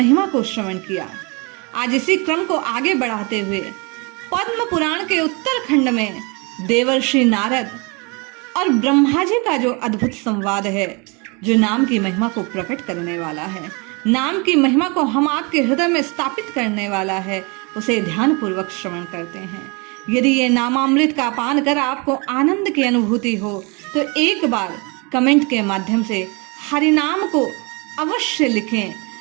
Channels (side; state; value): left; quieter; 30.1 dB